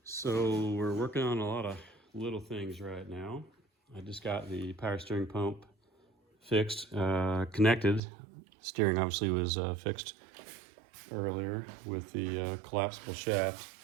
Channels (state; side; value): drops out; left; at 8.0 s